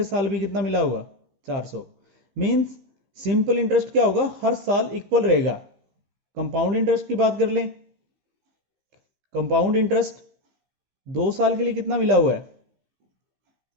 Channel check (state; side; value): late; left; 15 ms